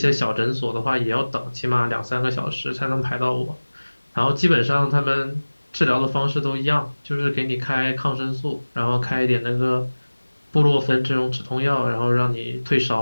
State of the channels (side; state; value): both; inverted; correlation -1.00